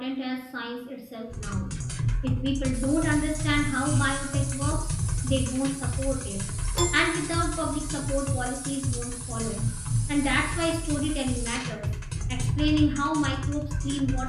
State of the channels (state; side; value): identical; both; correlation 1.00